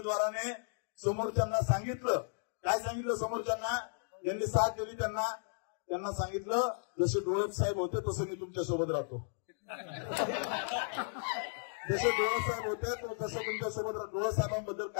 समोरच्यांना सांगितलं, काय सांगितलं समोरच्यांना, ज्यांनी साथ दिली त्यांना सांगितलं, जसे डोळप साहेब होते तसं मी तुमच्या सोबत राहतो, जसे डोळप साहेब होते तसं तुमच्या सोबत राहतो. डोळप साहेबांबद्दल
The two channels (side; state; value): right; silent; digital silence